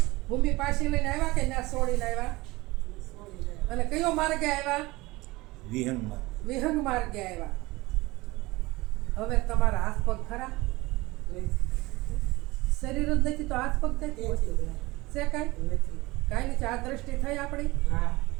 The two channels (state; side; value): quieter; left; 21.2 dB